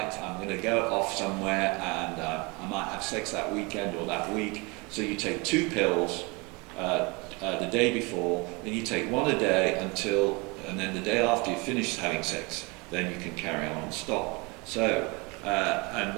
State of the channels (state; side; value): quieter; left; 27.9 dB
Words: I'm going to go off somewhere and I might have sex that weekend or that week. So you take 2 pills the day before, then you take 1 a day and then the day after you finish having sex, then you can carry on and stop. So, and